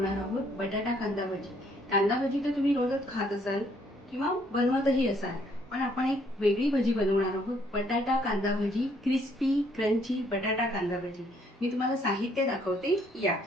आहोत बटाटा कांदा भजी. कांदा भजी तर तुम्ही रोजच खात असाल किंवा बनवतही असाल, पण आपण एक वेगळी भजी बनवणार आहोत. बटाटा कांदा भजी, क्रिस्पी क्रंची बटाटा कांदा भजी. मी तुम्हाला साहित्य दाखवते. या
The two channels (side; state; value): both; normal; correlation 0.66